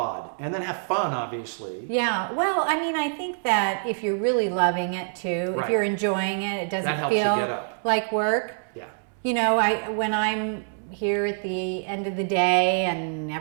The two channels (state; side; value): silent; left; 61 dB below the other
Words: And then have fun, obviously. Yeah. Well, I mean, I think that if you're really loving it too, if you're enjoying it, it doesn't feel like work. Yeah. When I'm here at the end of the day and